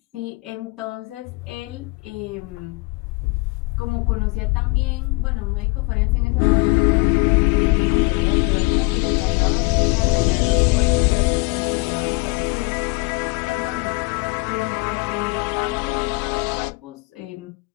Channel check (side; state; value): right; quieter; 26.4 dB